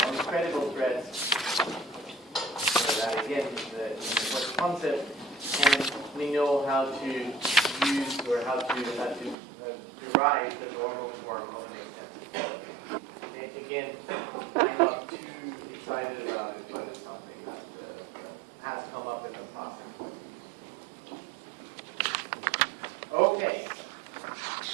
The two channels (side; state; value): left; drops out; at 9.3 s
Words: on credible threads. again, what the concept, and we know how to use or how to derive the normal form of an extensive quality. Again, I'm not too excited about it, but it's something that has come up in the past. Okay.